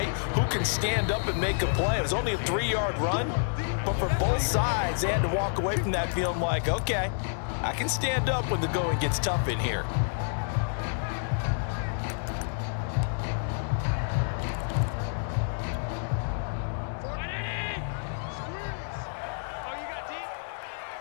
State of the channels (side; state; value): right; silent; digital silence